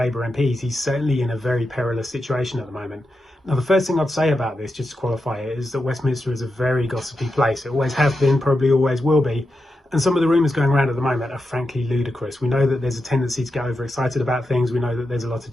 MPs. He's certainly in a very perilous situation at the moment. Now, the first thing I'd say about this, just to qualify it, is that Westminster is a very gossipy place. It always has been, probably always will be. And some of the rumours going around at the moment are frankly ludicrous. We know that there's a tendency to get overexcited about things. We know that there's a lot of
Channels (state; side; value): normal; both; correlation 0.88